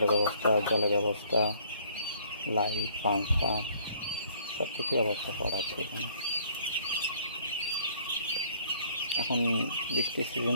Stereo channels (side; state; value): both; inverted; correlation -0.60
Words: ব্যবস্থা, জলের ব্যবস্থা, লাইট, পাংখা সব কিছু ব্যবস্থা করা আছে এখানে। এখন বৃষ্টির সিজন